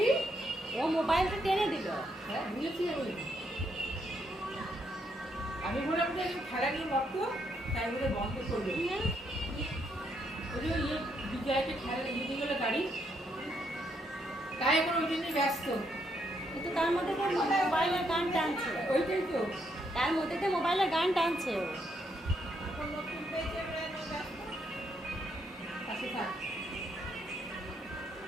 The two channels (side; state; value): both; normal; correlation 0.75